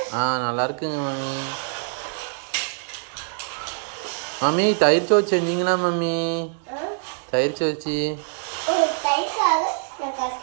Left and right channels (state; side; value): silent; left; 57 dB below the other